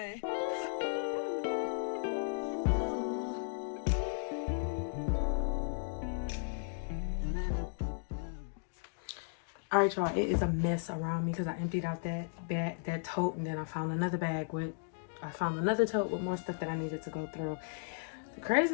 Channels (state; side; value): silent; right; digital silence